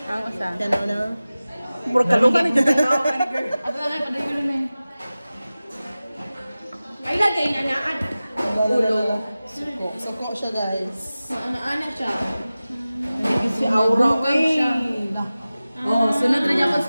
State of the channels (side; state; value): both; inverted; correlation -0.96